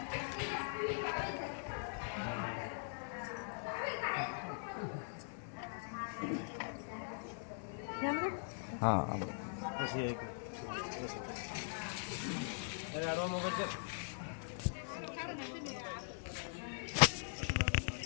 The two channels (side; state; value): right; silent; 50 dB below the other